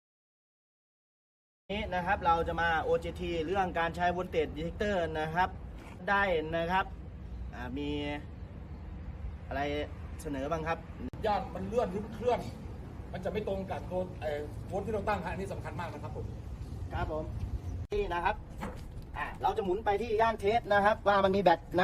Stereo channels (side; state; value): both; identical; correlation 1.00